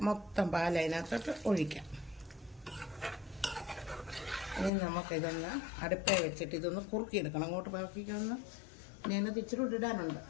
മൊത്തം പാൽ അതിനകത്തോട്ട് ഒഴിക്കാം. ഇനി നമുക്കിതൊന്ന് അടുപ്പേ വെച്ചിട്ട് ഇതൊന്ന് കുറുക്കിയെടുക്കണം. അങ്ങോട്ട് പറക്കിക്കൊന്ന് ഞാനത് ഇച്ചിരി ഇടാനുണ്ട്,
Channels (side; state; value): right; drops out; at 4.7 s